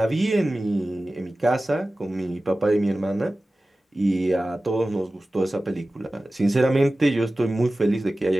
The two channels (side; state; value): both; normal; correlation 0.96